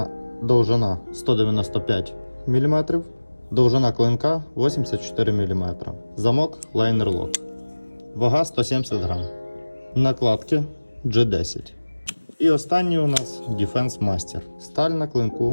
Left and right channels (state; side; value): inverted; both; correlation -1.00